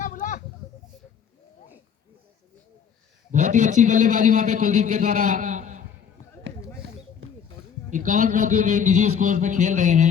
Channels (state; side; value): quieter; right; 7.4 dB